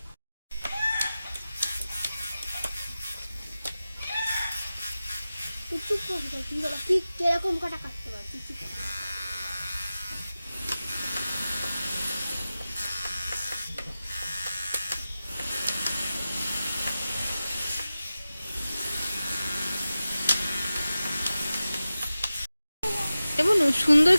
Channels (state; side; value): inverted; both; correlation -0.95